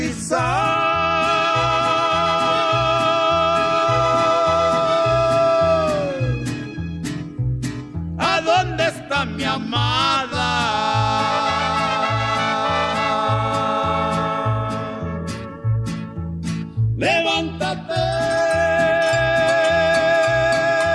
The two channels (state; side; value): identical; both; correlation 1.00